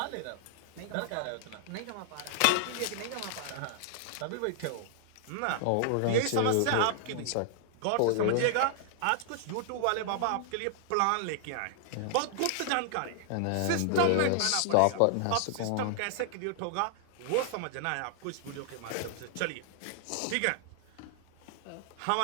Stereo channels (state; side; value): different; both; correlation -0.01